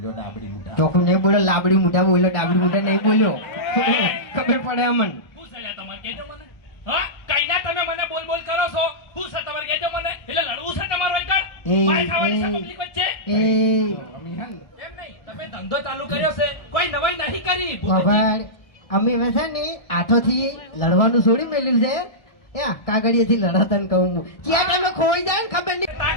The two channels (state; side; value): late; right; 1.7 ms